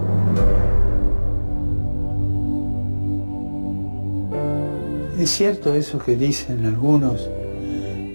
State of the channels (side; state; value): both; inverted; correlation -1.00